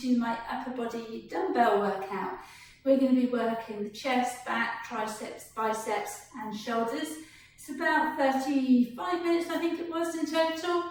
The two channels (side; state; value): both; identical; correlation 1.00